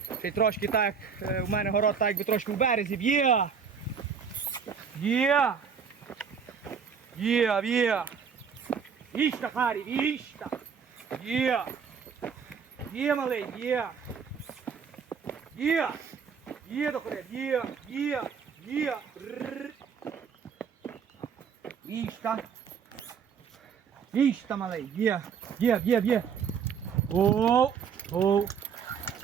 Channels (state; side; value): quieter; left; 6.6 dB